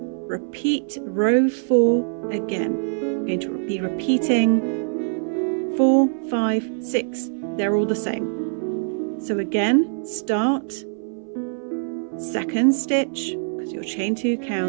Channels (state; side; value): silent; left; 60 dB below the other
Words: repeat row 4 again. We're going to be repeating 4, 5, 6. They're all the same. So again, start, second stitch, because your chain 2